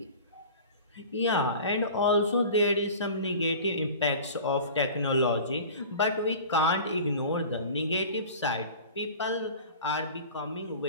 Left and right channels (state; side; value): inverted; both; correlation -0.40